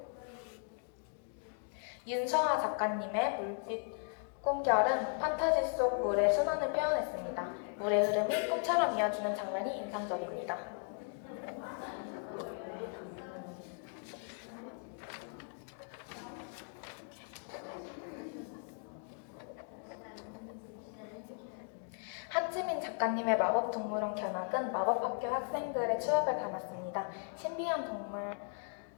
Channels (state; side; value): silent; right; 53 dB below the other